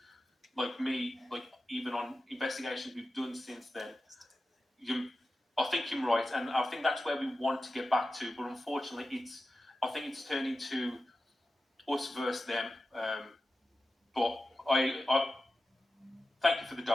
like me, like even on investigations we've done since then, I think you're right, and I think that's where we want to get back to. But unfortunately, I think it's turned into us versus them. But I thank you for the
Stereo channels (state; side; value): normal; both; correlation 0.93